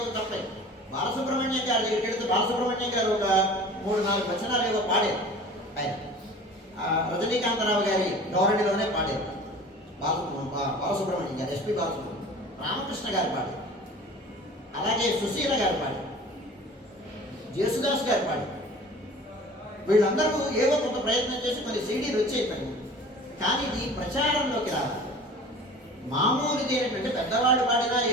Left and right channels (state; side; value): normal; both; correlation 0.42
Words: తప్పే. బాలసుబ్రహ్మణ్యం గారి దగ్గరికి వెళితే బాలసుబ్రహ్మణ్యం గారు ఒక 3-4 వచనాలు ఏవో పాడారు. ఆయన రజనీకాంతరావు గారి ధోరణిలోనే పాడారు. బాలసుబ్రహ్మణ్యం గారు, ఎస్పి బాలసుబ్రహ్మణ్యం, రామకృష్ణ గారు పాడారు, అలాగే సుశీల గారు పాడారు, జేసుదాస్ గారు పాడారు. వీళ్ళందరూ ఏవో కొంత ప్రయత్నం చేసి మరి సీడీలు వచ్చేయిపోయింది. కానీ ఇది ప్రచారంలోకి రావాలి. మామూలుది ఏంటంటే పెద్దవాడు పాడినా